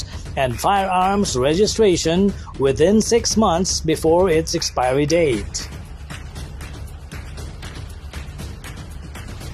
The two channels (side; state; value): both; identical; correlation 1.00